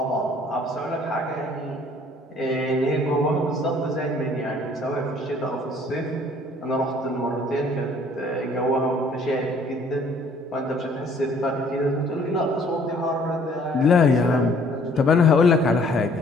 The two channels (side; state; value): both; normal; correlation 0.58